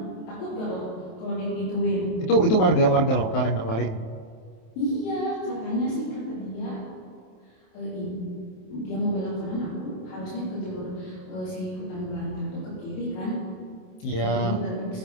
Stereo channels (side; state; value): right; late; 27 ms